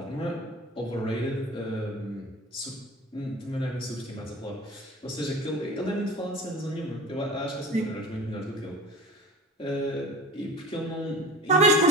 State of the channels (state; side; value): normal; both; correlation 0.38